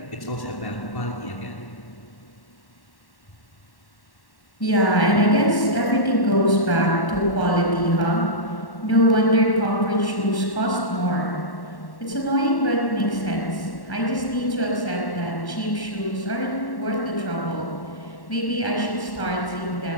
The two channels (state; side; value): late; right; 1.1 ms